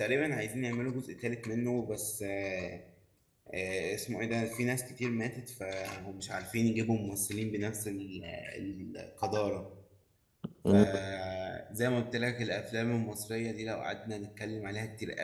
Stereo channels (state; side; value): identical; both; correlation 1.00